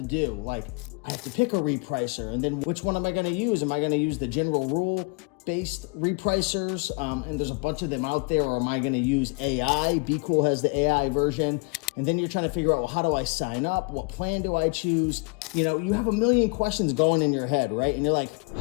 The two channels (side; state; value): right; quieter; 30.8 dB